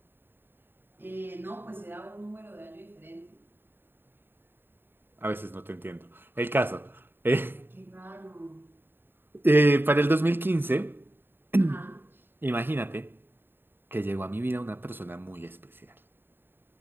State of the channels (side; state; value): left; late; 0.099 ms